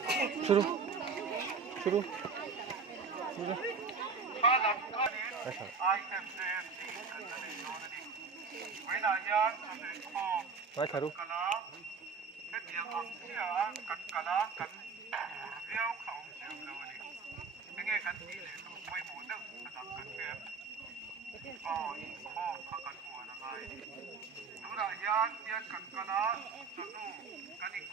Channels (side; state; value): left; quieter; 5.0 dB